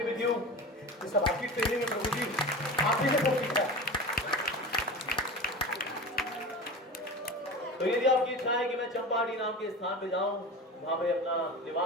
with you. ये सब आपकी ट्रेनिंग है प्रभु जी, आप ही ने सब सीखा है। तो यदि आपकी इच्छा है कि मैं चंपाहाटी नाम के स्थान पे जाऊं, वहां पे अपना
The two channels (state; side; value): normal; both; correlation 0.30